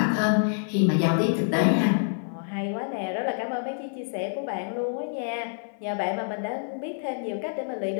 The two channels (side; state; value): right; silent; 60 dB below the other